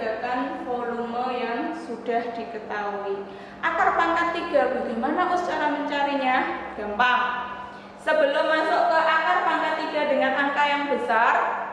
3 kan volume yang sudah diketahui. Akar pangkat 3 bagaimana cara mencarinya? Gampang. Sebelum masuk ke akar pangkat 3 dengan angka yang besar,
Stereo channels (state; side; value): identical; both; correlation 1.00